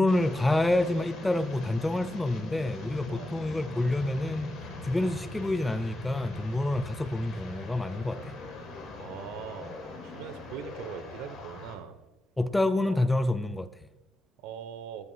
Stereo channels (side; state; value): both; normal; correlation 0.91